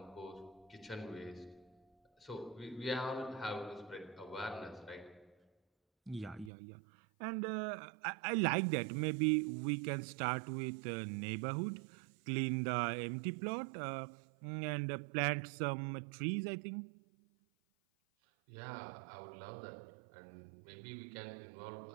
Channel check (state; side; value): drops out; left; at 6.5 s